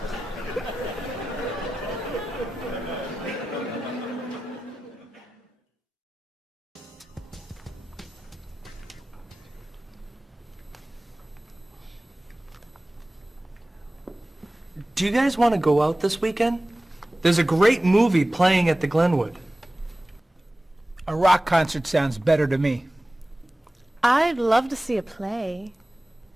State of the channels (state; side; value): normal; both; correlation 0.96